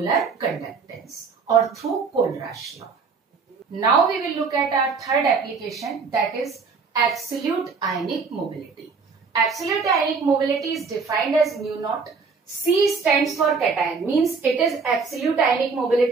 conductance और through Kohlrausch law. Now we will look at our third application, that is absolute ionic mobility. Absolute ionic mobility is defined as mu naught. C stands for cation, means it is absolute ionic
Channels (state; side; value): quieter; left; 5.0 dB